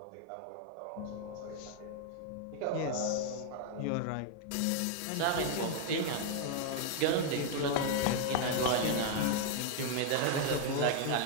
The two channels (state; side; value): different; both; correlation 0.00